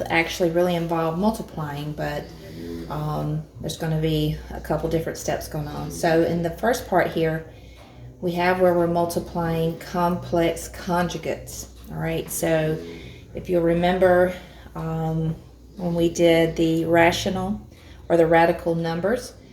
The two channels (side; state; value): both; identical; correlation 1.00